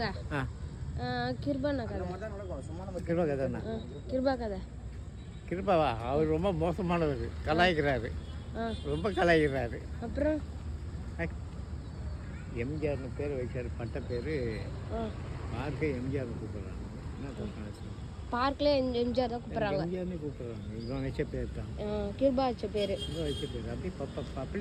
கிருபா கதைண்ணா, கிருபா கதை. கிருபாவா, அவர் ரொம்ப மோசமானவர், கலாய்க்கிறாரு, ரொம்ப கலாய்க்கிறாரு. அப்புறம் எம்ஜிஆர்னு பேர் வச்சார், பட்ட பேர் பார்க்க எம்ஜிஆர்னு கூப்பிட்றாங்க. என்ன சொல்கிறாங்க, பார்க்கில் எம்ஜிஆர் தான் கூப்பிட்றாங்க. எம்ஜிஆர்னு கூப்பிட்றாங்க. இவன் வச்ச பேர் தான், கிருபா வச்ச பேர். இவன் வச்ச பேர் அப்படி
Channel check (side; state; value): both; identical; correlation 1.00